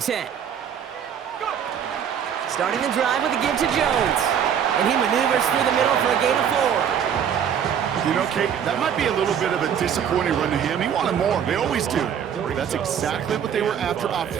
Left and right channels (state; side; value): quieter; left; 8.4 dB